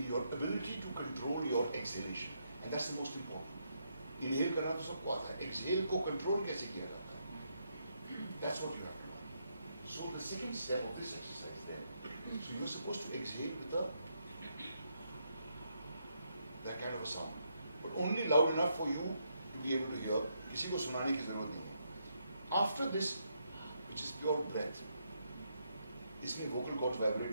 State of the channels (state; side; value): inverted; both; correlation -0.78